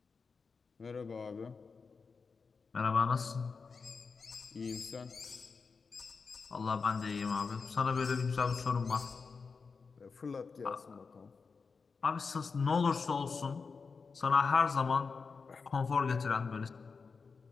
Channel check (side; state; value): right; quieter; 4.9 dB